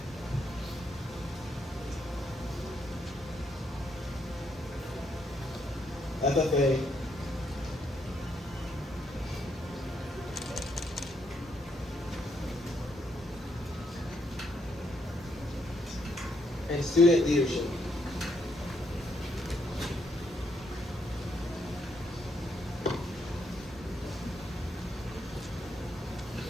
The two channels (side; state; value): both; normal; correlation 0.75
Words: FFA, and student leadership.